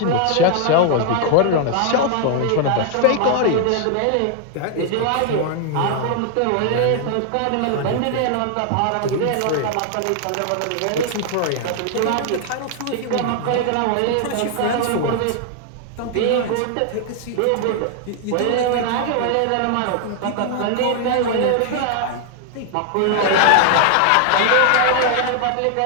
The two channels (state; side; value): different; both; correlation 0.00